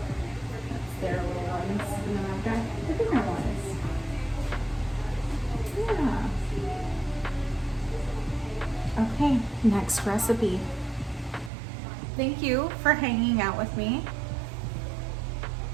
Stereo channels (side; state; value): left; drops out; at 11.5 s